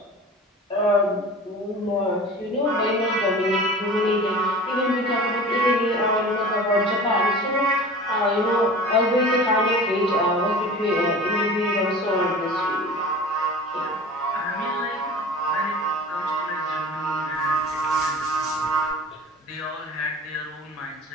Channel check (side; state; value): both; normal; correlation 0.38